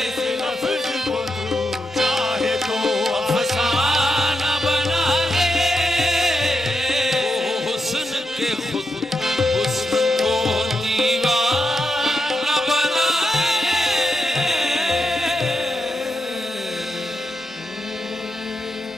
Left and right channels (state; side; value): normal; both; correlation 0.85